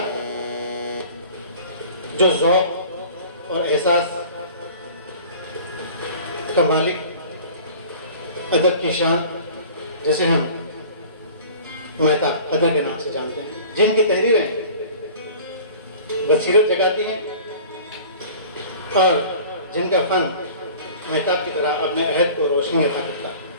جو ذوق اور احساس کا مالک، ادب کی شان جسے ہم مہتاب قدر کے نام سے جانتے ہیں، جن کی تحریریں بصیرت جگاتی ہیں اور جن کا فن مہتاب کی طرح اپنے عہد کو روشنی عطا کرتا ہے۔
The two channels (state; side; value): inverted; both; correlation -0.44